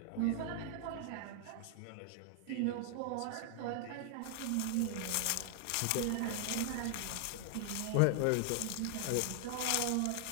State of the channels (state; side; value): different; both; correlation 0.00